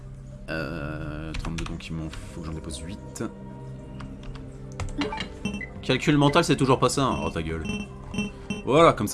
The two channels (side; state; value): both; identical; correlation 1.00